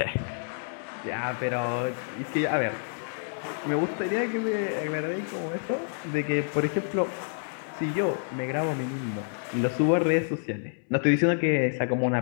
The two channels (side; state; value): right; silent; 59 dB below the other